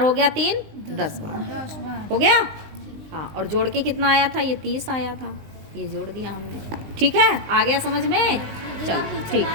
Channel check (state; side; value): late; left; 20 ms